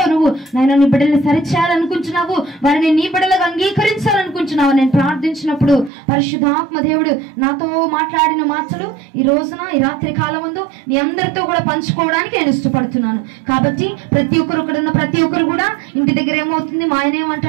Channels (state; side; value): drops out; left; at 5.9 s